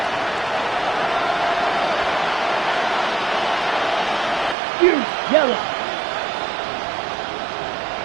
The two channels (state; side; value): drops out; left; at 4.5 s